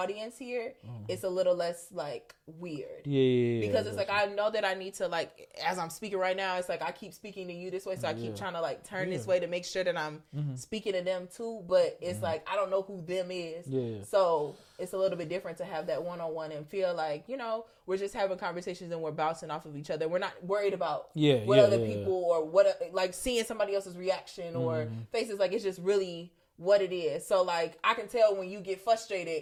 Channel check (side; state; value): both; identical; correlation 1.00